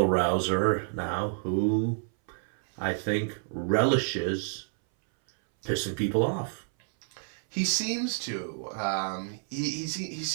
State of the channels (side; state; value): left; silent; 59 dB below the other